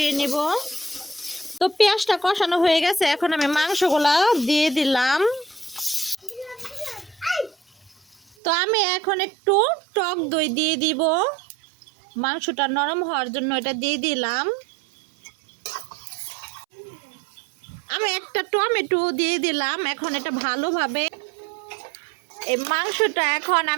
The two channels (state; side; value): drops out; left; at 8.3 s